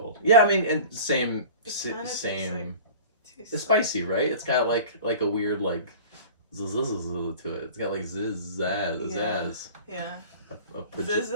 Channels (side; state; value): both; inverted; correlation -0.40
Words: Yeah, I mean, and same. It's spicy, right? It's got like a weird like zzz to it. It's got like zazz. Yeah. A